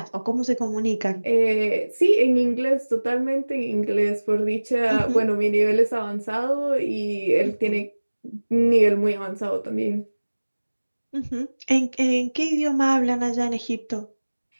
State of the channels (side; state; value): both; inverted; correlation -1.00